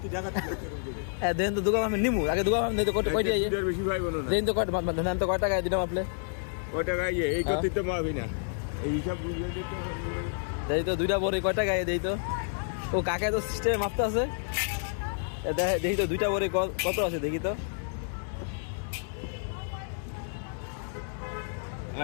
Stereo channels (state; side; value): silent; right; digital silence